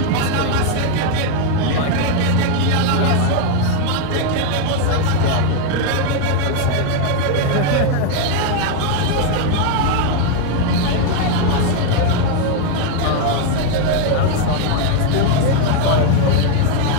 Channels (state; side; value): different; both; correlation 0.01